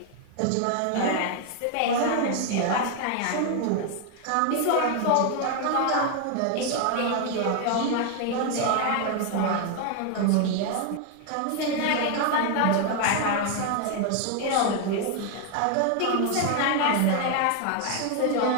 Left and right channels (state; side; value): different; both; correlation 0.01